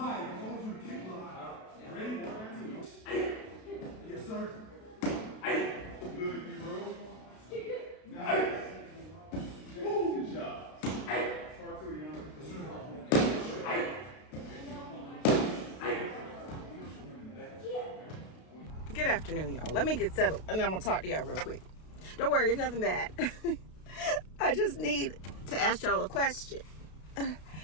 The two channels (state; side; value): late; right; 32 ms